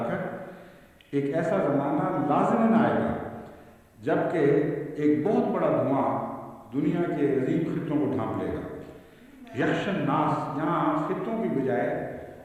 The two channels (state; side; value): identical; both; correlation 1.00